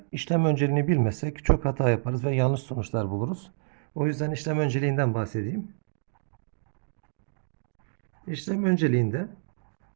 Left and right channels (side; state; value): left; silent; digital silence